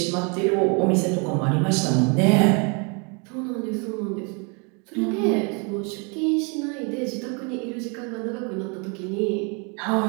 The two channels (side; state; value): left; quieter; 34.1 dB